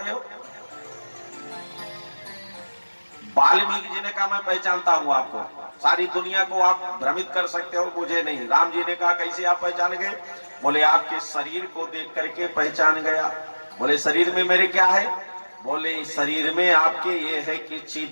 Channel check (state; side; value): inverted; both; correlation -1.00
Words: हो। वाल्मीकि जी ने कहा मैं पहचानता हूं आपको, सारी दुनिया को आप भ्रमित कर सकते हो, मुझे नहीं। राम जी ने कहा कैसे आप पहचान गए। बोले आपके शरीर को देख करके पहचान गया। बोले शरीर में मेरे क्या है। बोले शरीर में आपके ये है कि